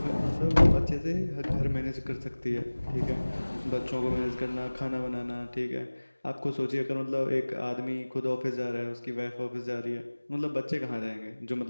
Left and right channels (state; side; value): inverted; both; correlation -1.00